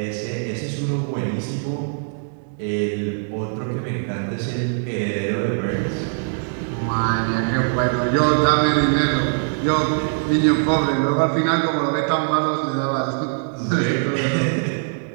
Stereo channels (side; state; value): left; silent; digital silence